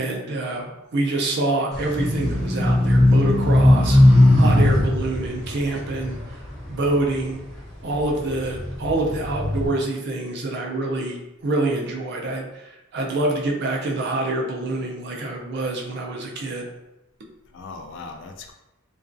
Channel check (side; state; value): both; normal; correlation 0.77